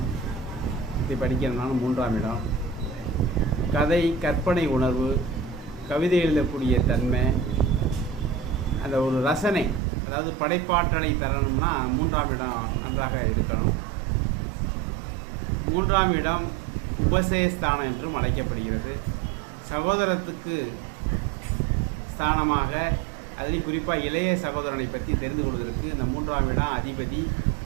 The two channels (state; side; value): drops out; left; at 9.8 s